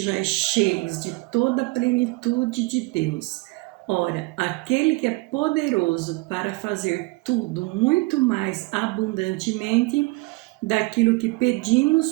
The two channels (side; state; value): left; quieter; 23.9 dB